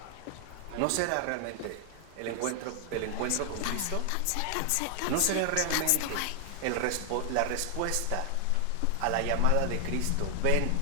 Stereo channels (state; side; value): different; both; correlation 0.00